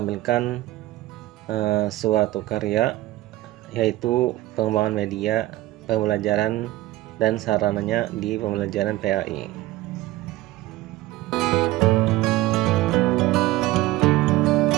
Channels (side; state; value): left; quieter; 17.1 dB